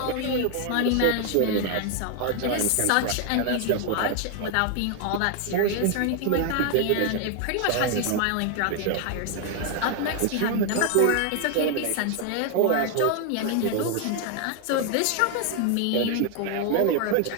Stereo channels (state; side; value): different; both; correlation 0.00